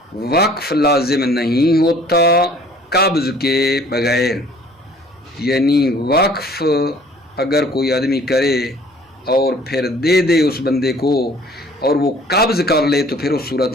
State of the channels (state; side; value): normal; both; correlation 0.54